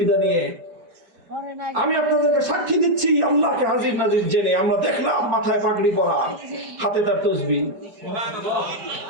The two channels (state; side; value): late; left; 4.3 ms